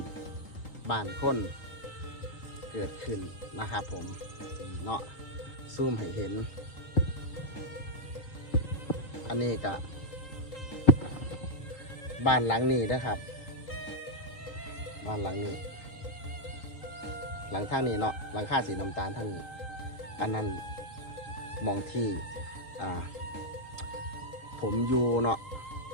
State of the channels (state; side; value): late; right; 3.8 ms